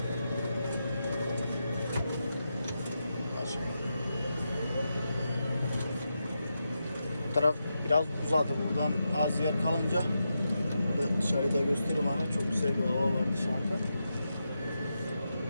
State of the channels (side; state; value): both; inverted; correlation -0.87